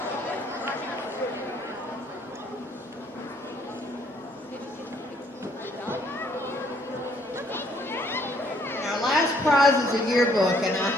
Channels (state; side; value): normal; both; correlation 0.65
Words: Prize is a yearbook, and I